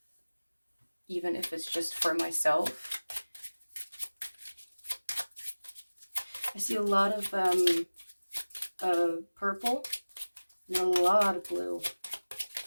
Even if it's just for myself. I see a lot of purple and a lot of blue.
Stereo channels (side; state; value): both; inverted; correlation -1.00